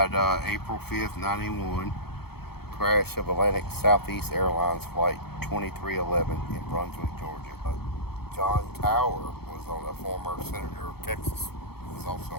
April 5th, 91. Crash of Atlantic Southeast Airlines Flight 2311 in Brunswick, Georgia. John Tower was on a former senator of Texas. Was also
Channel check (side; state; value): right; late; 0.96 ms